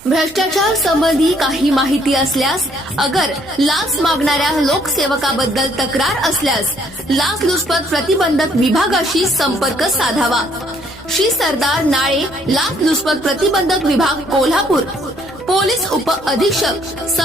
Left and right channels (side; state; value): right; noise; rumble, 25 dB below the sound